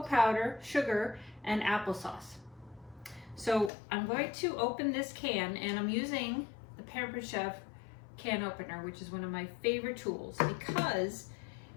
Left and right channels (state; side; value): drops out; right; at 3.7 s